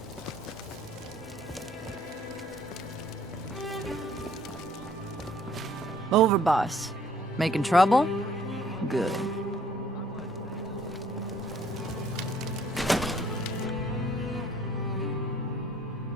Overboss. Making trouble? Good.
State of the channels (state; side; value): normal; both; correlation 0.60